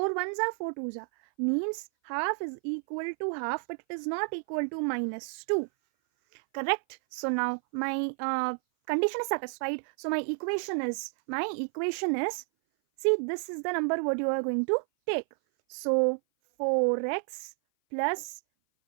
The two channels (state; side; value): silent; left; 56 dB below the other